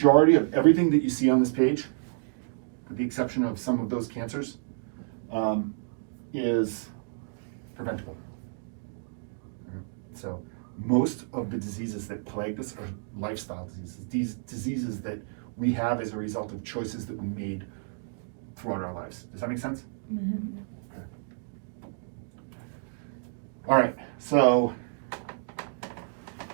of everything that you see on this page, with the exception of some of those cancers, is preventable. So most of the diseases that plague us are lifestyle diseases. These diseases that we have as a result of choices that we made throughout our lives. Does that make sense? Mm-hmm. Okay. All right, so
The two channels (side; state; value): left; silent; digital silence